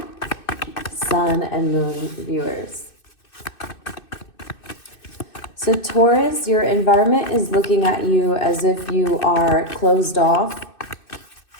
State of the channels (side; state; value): right; late; 2.6 ms